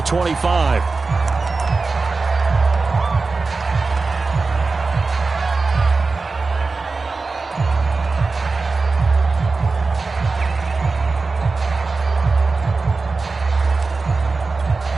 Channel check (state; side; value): quieter; left; 4.0 dB